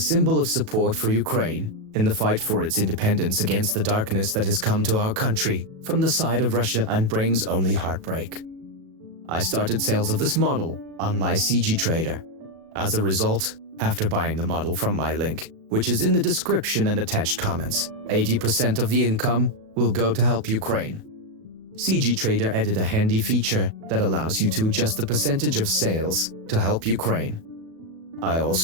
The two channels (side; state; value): left; late; 37 ms